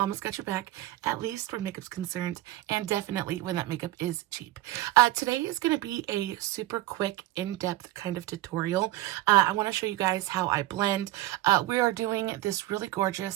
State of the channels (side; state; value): left; quieter; 16.6 dB